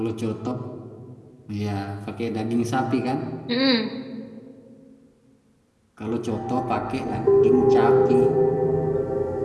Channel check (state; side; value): identical; both; correlation 1.00